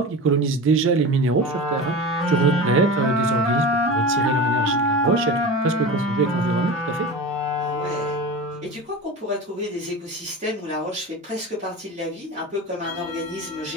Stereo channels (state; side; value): normal; both; correlation 0.30